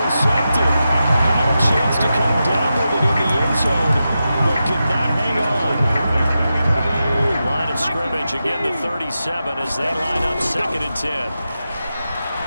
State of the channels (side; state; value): both; inverted; correlation -0.90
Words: Had a chance to come down with it in the end zone, but could not hang on. Line of scrimmage, again the 37 as they line up 2nd and 10.